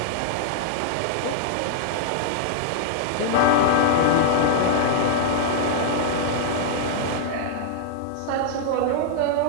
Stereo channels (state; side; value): different; both; correlation -0.01